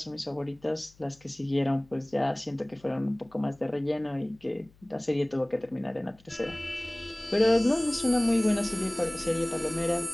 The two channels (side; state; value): left; noise; hum, 29 dB below the sound